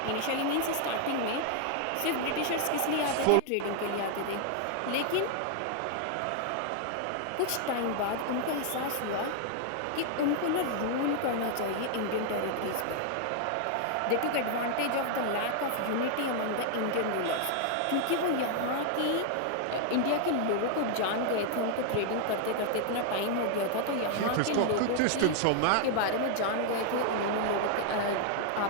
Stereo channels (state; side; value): different; both; correlation 0.00